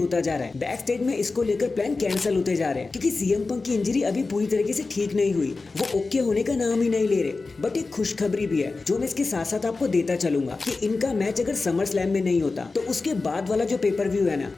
जा रहा है। बैक स्टेज में इसको लेकर प्लान कैंसिल होते जा रहे हैं क्योंकि सीएम पंक की इंजरी अभी पूरी तरीके से ठीक नहीं हुई, वो ओके होने का नाम ही नहीं ले रहे। बट एक खुशखबरी भी है जो मैं इसके साथ साथ आपको देता चलूंगा कि इनका मैच अगर समर स्लैम नहीं होता तो उसके बाद वाला जो पेपर व्यू है ना,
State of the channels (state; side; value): quieter; right; 3.8 dB